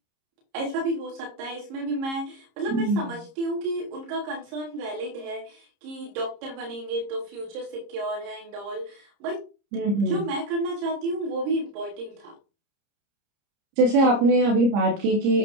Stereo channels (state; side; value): late; left; 30 ms